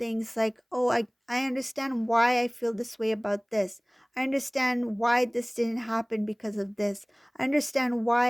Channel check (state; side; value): identical; both; correlation 1.00